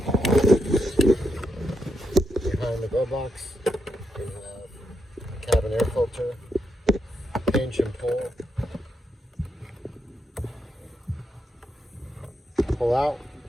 behind the glove box, we have a cabin air filter, pinch and pull out,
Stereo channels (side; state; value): both; normal; correlation 0.81